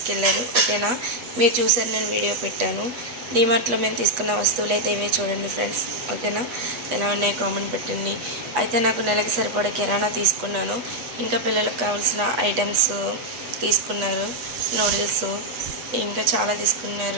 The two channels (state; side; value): late; left; 8.1 ms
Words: ఓకేనా, మీరు చూసారు, నేను వీడియో పెట్టాను. డీమార్ట్లో మేము తీసుకున్న వస్తువులు అయితే ఇవే చూడండి ఫ్రెండ్స్. ఓకేనా, ఎలా ఉన్నాయి కామెంట్ పెట్టండి. అయితే నాకు నెలకి సరిపడా కిరాణా తీసుకున్నాను. ఇంకా పిల్లలకు కావాల్సిన ఐటమ్స్ తీసుకున్నారు, నూడిల్స్ ఇంకా చాలా